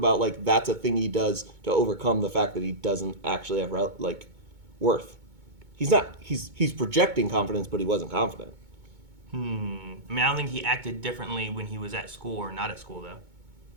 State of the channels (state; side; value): late; left; 2.2 ms